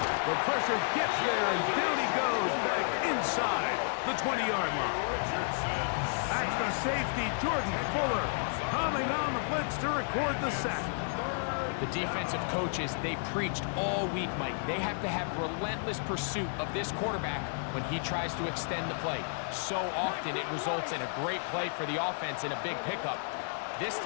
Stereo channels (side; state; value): right; silent; digital silence